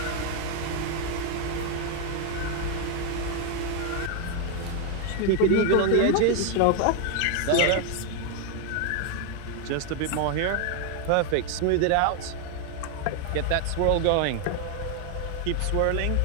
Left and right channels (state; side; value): different; both; correlation 0.01